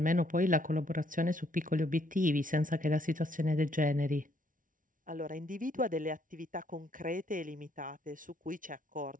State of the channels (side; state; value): left; late; 0.38 ms